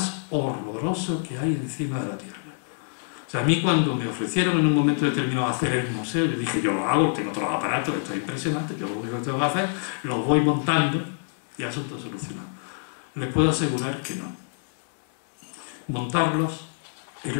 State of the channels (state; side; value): silent; right; 61 dB below the other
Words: horroroso que hay encima de la tierra. O sea, a mí cuando me ofrecieron en un momento determinado hacer el museo, yo dije, yo lo hago, tengo todos los aparatos, esto es impresionante, yo lo único que tengo que hacer, los voy montando y asunto solucionado. Les puedo asegurar que no. Montarlos es